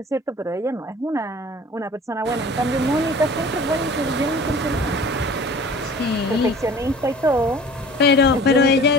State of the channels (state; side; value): normal; both; correlation 0.45